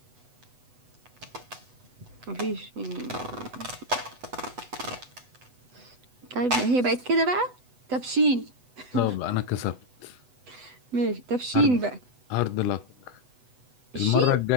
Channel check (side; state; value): left; late; 8.0 ms